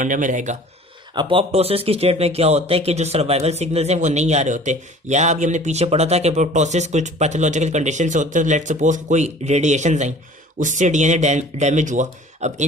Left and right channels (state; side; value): normal; both; correlation 0.47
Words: में रहेगा। अपोप्टोसिस की स्टेट में क्या होता है कि जो सर्वाइवल सिग्नल्स हैं वो नहीं आ रहे होते, या अभी हमने पीछे पढ़ा था कि अपोप्टोसिस कुछ पैथोलॉजिकल कंडीशन से होते हैं। लेट्स सपोज कोई रेडिएशन आई, उससे DNA डैमेज हुआ। अब